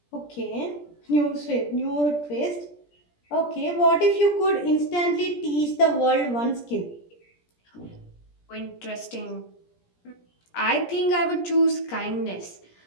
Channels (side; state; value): right; late; 17 ms